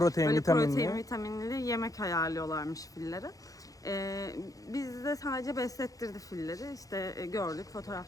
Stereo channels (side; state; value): right; late; 0.17 ms